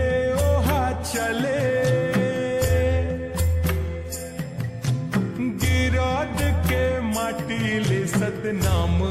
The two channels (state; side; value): identical; both; correlation 1.00